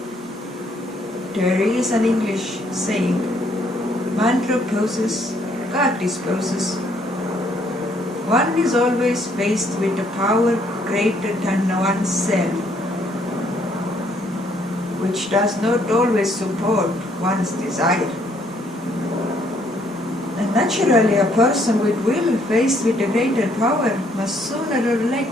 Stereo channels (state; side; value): normal; both; correlation 0.67